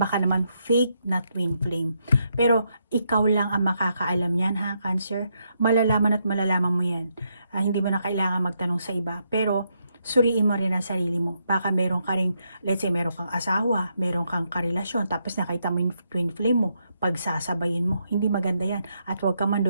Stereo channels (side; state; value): both; inverted; correlation -0.79